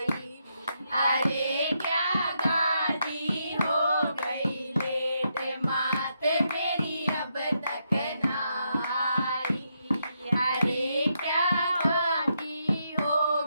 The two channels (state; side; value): inverted; both; correlation -0.80